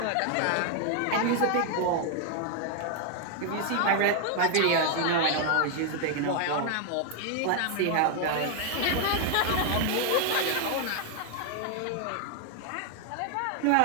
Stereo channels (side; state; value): both; different; correlation 0.00